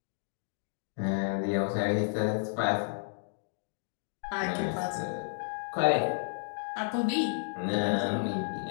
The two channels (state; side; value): silent; right; digital silence